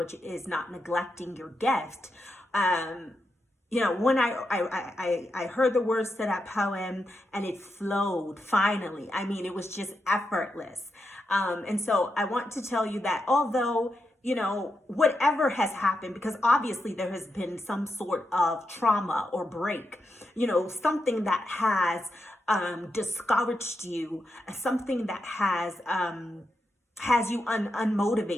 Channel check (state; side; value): normal; both; correlation 0.86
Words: is not neglecting your gift. When I heard the words to that poem, and it flowed finally. I mean, it was just effortless. And so I want to tell you that although, whatever has happened, because obviously there has been some sort of trauma or break, something that has discouraged you, something that has you